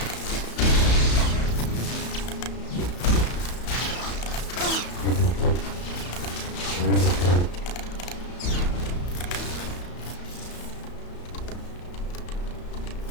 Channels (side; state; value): right; late; 34 ms